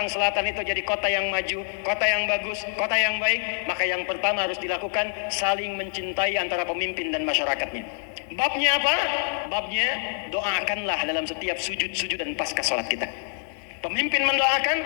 Selatan itu jadi kota yang maju, kota yang bagus, kota yang baik, maka yang pertama harus dilakukan saling mencintai antara pemimpin dan masyarakatnya. Babnya apa? Babnya doakanlah dalam setiap sujud-sujud dan pasca sholat kita. Pemimpin mendoakan,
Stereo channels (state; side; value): silent; right; digital silence